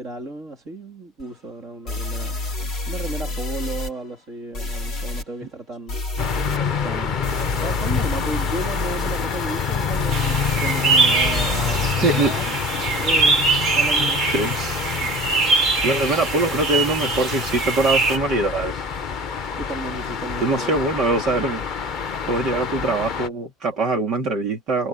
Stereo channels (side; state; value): both; normal; correlation 0.40